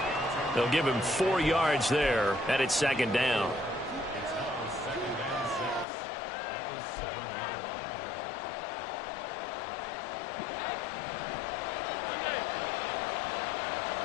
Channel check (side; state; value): right; drops out; at 5.9 s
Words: They'll give him 4 yards there, and it's 2nd down.